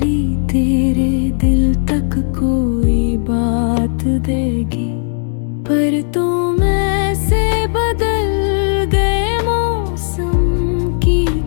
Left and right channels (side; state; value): right; silent; 67 dB below the other